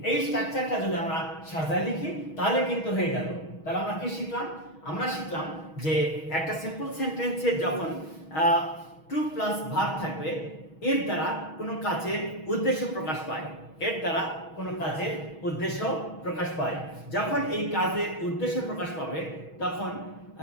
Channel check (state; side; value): late; right; 6.3 ms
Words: এই স্ট্রাকচারটা যদি আমরা সাজায় লিখি তাহলে কিন্তু হয়ে গেল। তাহলে আমরা কি শিখলাম? আমরা শিখলাম যে একটা সিম্পল সেন্টেন্সে যখন টু প্লাস ভার্ব থাকবে এর দ্বারা কোনো কাজের উদ্দেশ্য প্রকাশ পায়। যখন এই কাজের উদ্দেশ্য প্রকাশ পাবে তখন